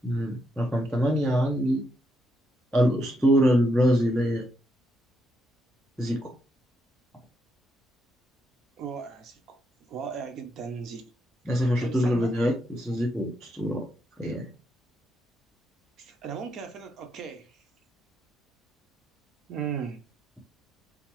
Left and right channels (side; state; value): both; normal; correlation 0.79